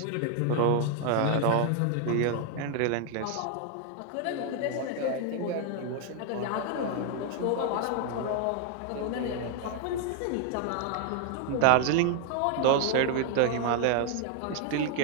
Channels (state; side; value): different; both; correlation 0.00